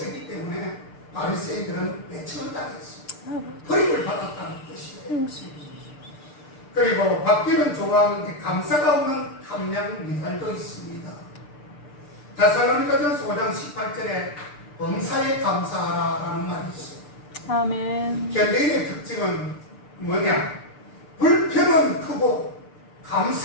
때문에 바리새인들은 외침을 당했어. 버림을 받았다는 뜻이에요. 그리고 받기는 좋아하는데 감사가 없는 함량 미달도 있습니다. 데살로니가전서 5장 18절에 범사에 감사하라라는 말이 있어요. 아멘. 현대인의 특징은 뭐냐? 불평은 크고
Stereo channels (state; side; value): late; right; 6.8 ms